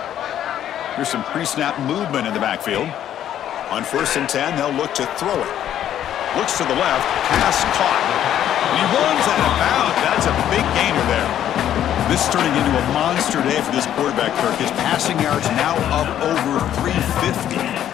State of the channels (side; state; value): right; quieter; 10.9 dB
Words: Here's some pre-snap movement in the backfield. On 1st and 10, they'll look to throw it. Looks to the left, pass caught. And he runs out of bounds. That's a big gainer there. This is turning into a monster day for this quarterback, Kirk. His passing yards now up over 350.